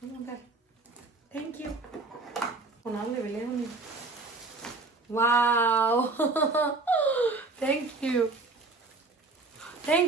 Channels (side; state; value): left; quieter; 3.5 dB